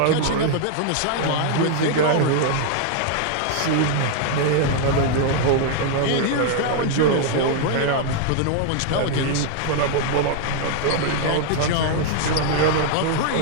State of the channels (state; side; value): different; both; correlation 0.00